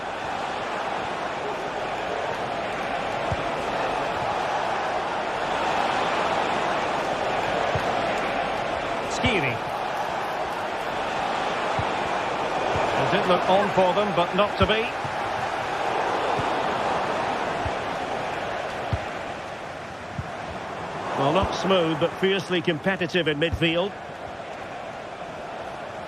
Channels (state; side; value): identical; both; correlation 1.00